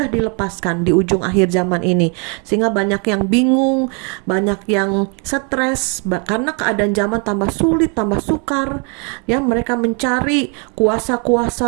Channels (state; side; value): quieter; left; 36.1 dB